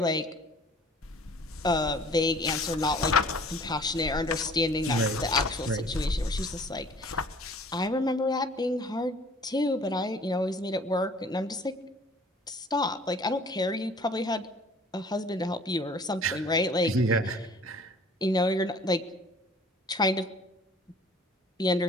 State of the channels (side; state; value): both; normal; correlation 0.51